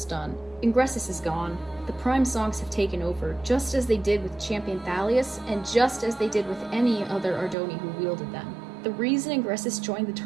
done. Ingressus is gone. The Prime songs have taken over, just as they did with Champion Thalius, and just as they did with any other Ardoni who wielded them. The reason Ingressus joined the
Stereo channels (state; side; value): drops out; left; at 7.6 s